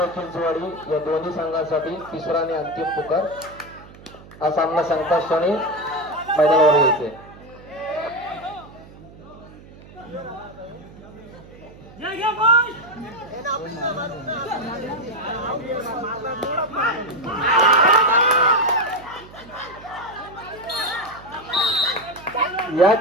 चिंचवाडी या दोन्ही संघांसाठी तिसरा आणि अंतिम पुकार. हा सामना संगता क्षणी मैदानावर येते. या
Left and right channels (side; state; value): right; noise; hum, 20 dB below the sound